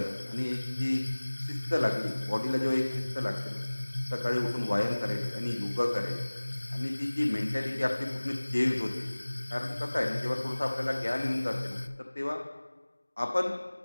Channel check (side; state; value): both; inverted; correlation -1.00